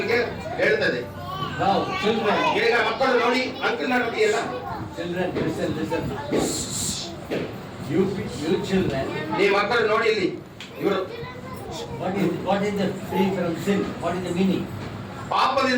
ಹೇಳ್ತದೆ. Now, children, ಈಗ ಮಕ್ಕಳು ನೋಡಿ ಅಂಕಲ್ ನೋಡಿ ಎಲ್ಲ children, listen. You children, ಈ ಮಕ್ಕಳು ನೋಡಿ ಇಲ್ಲಿ ಇವರು what is the free from sin? What is the meaning?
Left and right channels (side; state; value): both; identical; correlation 1.00